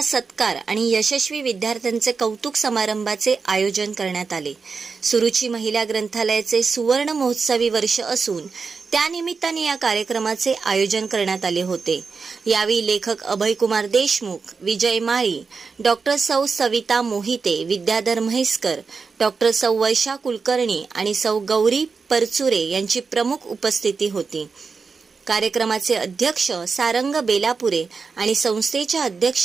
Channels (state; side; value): quieter; left; 5.0 dB